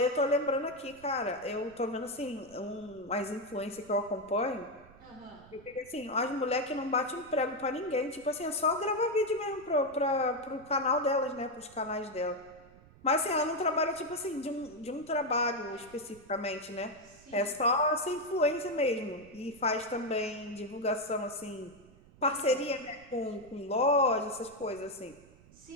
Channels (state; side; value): noise; right; rumble, 24 dB below the sound